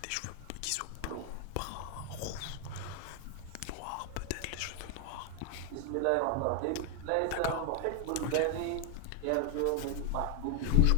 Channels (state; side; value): different; both; correlation 0.00